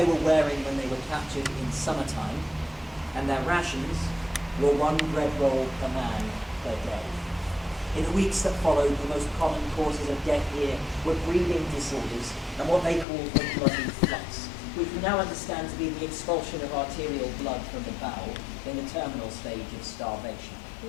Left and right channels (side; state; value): right; drops out; at 13.1 s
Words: were wearing when they were captured in summertime, and their rations were one bread roll per man per day. In the weeks that followed, the most common causes of death here were breathing disorders and what they called the bloody flux, which we now understand to be the expulsion of arterial blood from the bowel in the terminal stage of starvation.